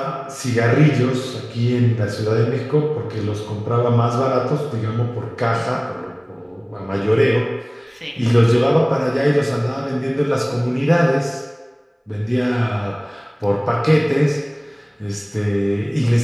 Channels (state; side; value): identical; both; correlation 1.00